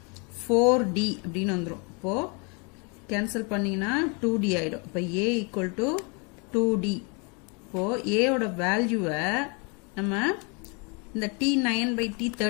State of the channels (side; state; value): right; quieter; 33.3 dB